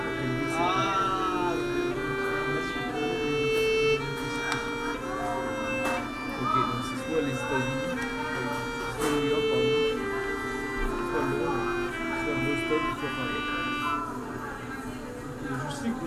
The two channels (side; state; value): both; identical; correlation 1.00